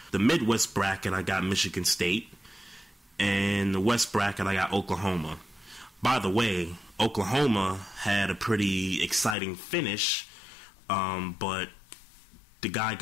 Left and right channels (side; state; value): right; drops out; at 9.3 s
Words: The Midwest bracket, I got Michigan State. And the West bracket, I got Oklahoma. By the way, Oklahoma had a pretty exciting finish, but the guy